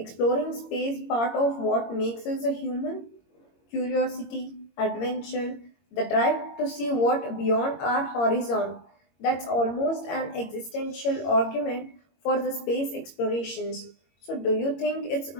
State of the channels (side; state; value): right; late; 22 ms